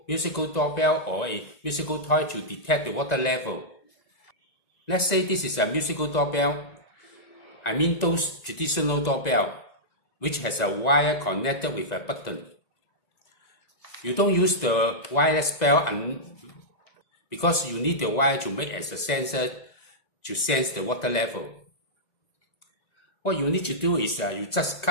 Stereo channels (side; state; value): right; late; 2.0 ms